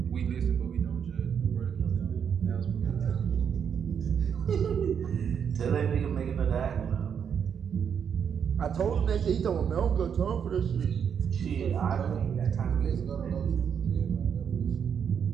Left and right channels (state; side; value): quieter; left; 7.6 dB